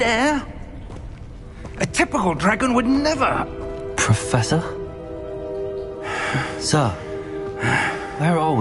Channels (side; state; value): both; identical; correlation 1.00